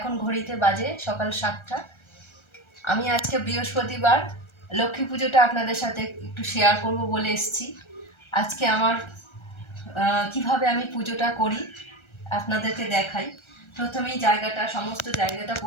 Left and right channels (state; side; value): late; right; 1.3 ms